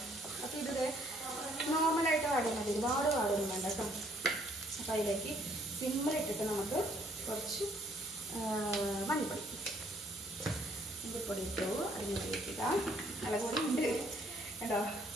അപ്പോൾ ഇത് നോർമലായിട്ട് വാടിയാൽ മതി, ഒരുപാട് വാടൊന്നും വേണ്ട കേട്ടോ. അപ്പോൾ അതിലേക്ക് സിമ്മിലിട്ടിട്ട് നമുക്ക് കുറച്ച് മഞ്ഞൾപ്പൊടി ഇട്ടു. അതിന് വേണ്ടിയിട്ടില്ല, മുളക് പൊടി ഉണ്ട് കേട്ടോ.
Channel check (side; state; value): both; normal; correlation 0.64